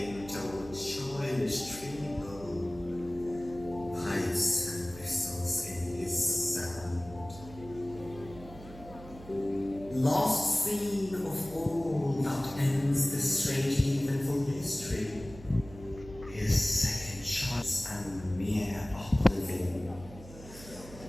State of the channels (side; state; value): right; noise; hum, 17 dB below the sound